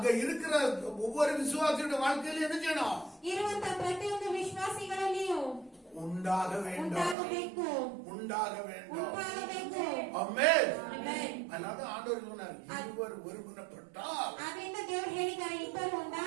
இருக்கிற ஒவ்வொரு விசுவாசியோட வாழ்க்கையில என்ன செய்யணும்? ಇರುವಂತ ಪ್ರತಿಯೊಂದು ವಿಶ್ವಾಸಿಗಳಲ್ಲಿಯೂ உண்டாக வேண்டும். ಉಂಟಾಗಬೇಕು. உண்டாக வேண்டும். ಉಂಟಾಗಬೇಕು. ஆமென். ಆಮೆನ್. அதனால ஆண்டவர் சொன்னார், இருவர் ஒருமனப்பட்டால் ಆದ್ರಿಂದ ದೇವರು ಹೇಳಿದ್ದಾರೆ, ಇಬ್ಬರು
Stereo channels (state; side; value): drops out; left; at 7.2 s